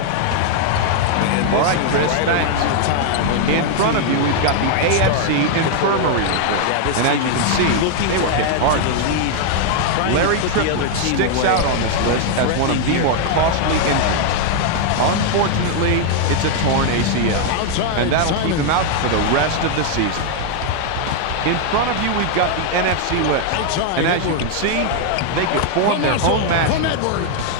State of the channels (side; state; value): both; different; correlation 0.00